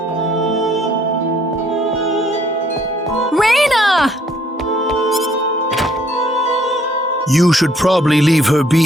Raina! You should probably leave her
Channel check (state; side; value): normal; both; correlation 0.64